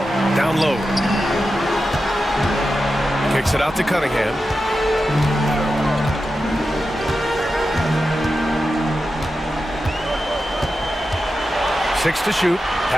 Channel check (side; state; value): both; normal; correlation 0.91